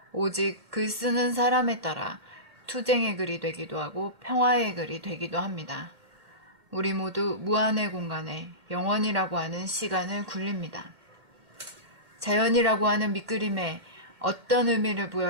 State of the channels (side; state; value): left; late; 2.0 ms